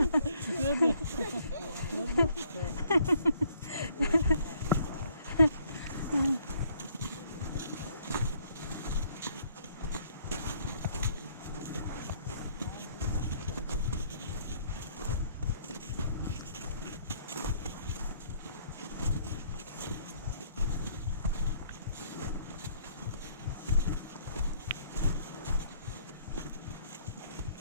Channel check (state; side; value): inverted; both; correlation -0.64